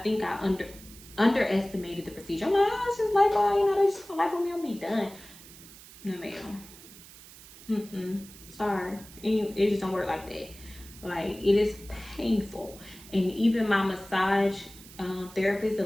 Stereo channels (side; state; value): right; noise; hiss, 19 dB below the sound